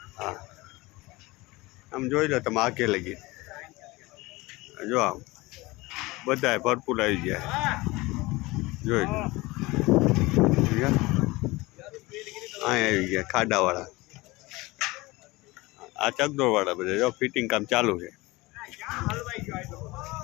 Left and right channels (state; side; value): quieter; right; 21.8 dB